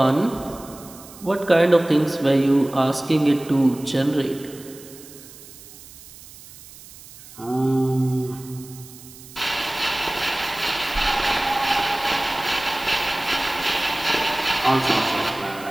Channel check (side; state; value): right; noise; hiss, 19 dB below the sound